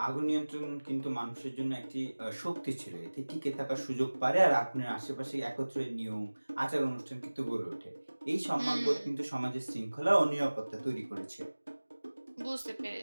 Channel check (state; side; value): inverted; both; correlation -1.00